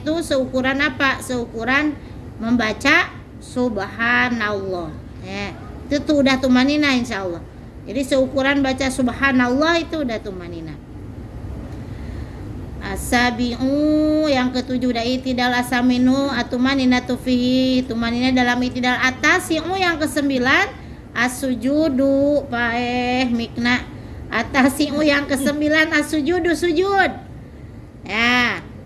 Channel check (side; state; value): both; identical; correlation 1.00